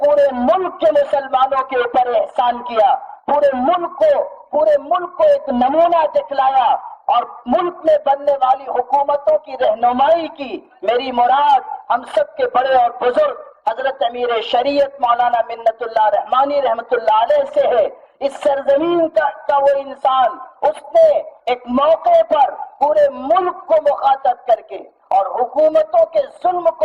ملک کے مسلمانوں کے اوپر احسان کیا، پورے ملک کو ایک نمونہ دکھلایا اور ملک میں بننے والی حکومتوں کی رہنمائی کی۔ میری مراد ہم سب کے بڑے اور بزرگ حضرت امیر شریعت مولانا منت اللہ رحمانی رحمت اللہ علیہ سے ہے۔ اس سرزمین کا وہ انسان، اس نے ایک موقع پر پورے ملک کو مخاطب کر کے اور حکومتوں کے ظلم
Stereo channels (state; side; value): identical; both; correlation 1.00